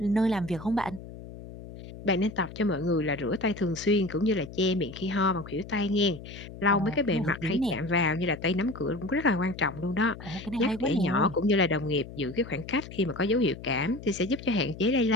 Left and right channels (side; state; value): left; noise; hum, 14 dB below the sound